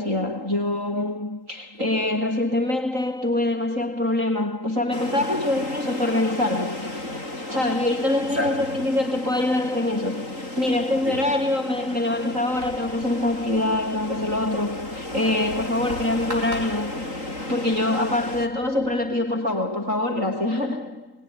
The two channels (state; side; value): late; left; 3.8 ms